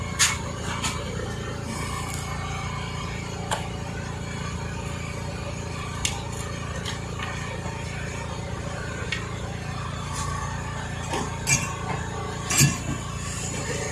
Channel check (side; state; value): both; identical; correlation 1.00